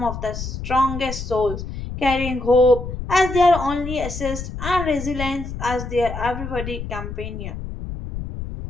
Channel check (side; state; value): left; noise; rumble, 7 dB below the sound